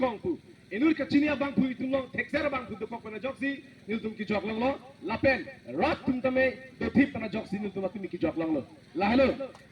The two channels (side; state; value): both; identical; correlation 1.00